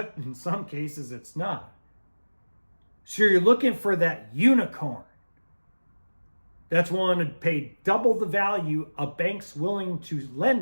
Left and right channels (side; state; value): both; inverted; correlation -1.00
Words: in some cases it's not. So you're looking for that unicorn that's willing to pay double the value a bank's willing to